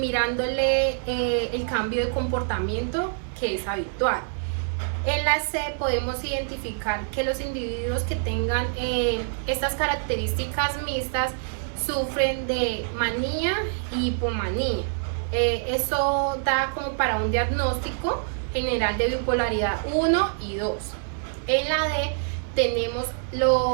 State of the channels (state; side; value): silent; left; digital silence